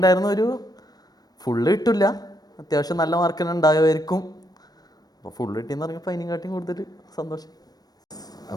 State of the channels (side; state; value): right; late; 0.19 ms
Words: ഒരു ഫുള്ള് കിട്ടില്ല, അത്യാവശ്യം നല്ല മാർക്ക് തന്നെ ഉണ്ടാകുമായിരിക്കും. അപ്പോൾ ഫുള്ള് കിട്ടിയെന്ന് പറഞ്ഞപ്പോൾ അതിനെക്കാട്ടിയും കൂടുതൽ സന്തോഷം.